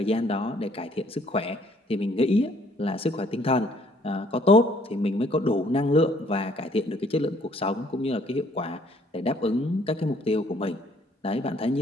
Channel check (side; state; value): both; normal; correlation 0.62